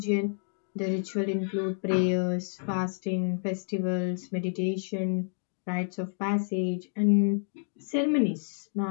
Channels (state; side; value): silent; right; digital silence